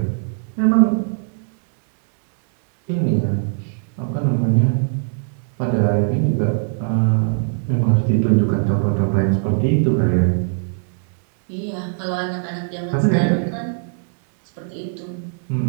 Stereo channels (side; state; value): left; silent; digital silence